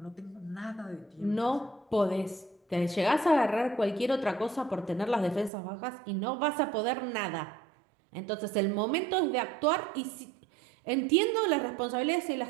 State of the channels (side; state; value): left; drops out; at 5.5 s